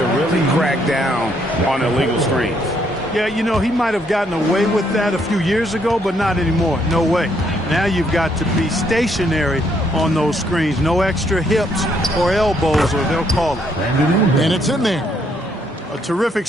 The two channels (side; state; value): both; normal; correlation 0.71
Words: really crack down on illegal screens. Yeah, you know, he might have gotten away with that a few years ago, but not anymore. No way. Now you've got to be stationary on those screens. No extra hips or elbows, or they'll call it. And it's in there. A terrific